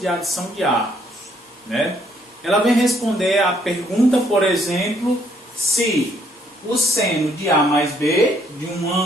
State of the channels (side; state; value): both; normal; correlation 0.68